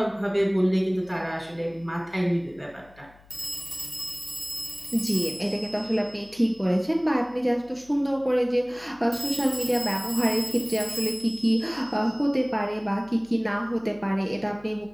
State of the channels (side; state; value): left; noise; hum, 26 dB below the sound